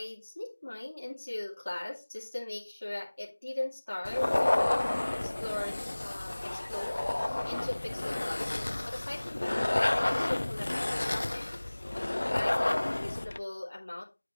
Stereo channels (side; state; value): both; inverted; correlation -1.00